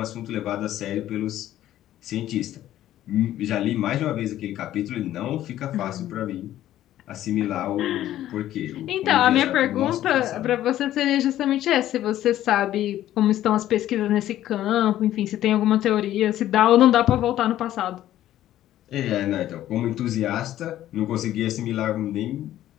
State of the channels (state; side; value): quieter; right; 13.0 dB